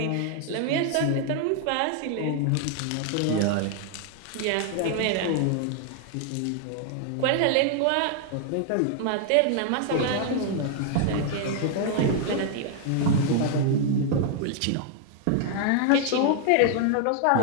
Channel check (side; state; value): both; different; correlation 0.00